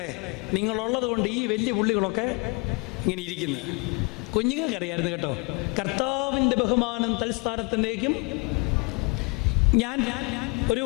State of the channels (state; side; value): quieter; right; 31.1 dB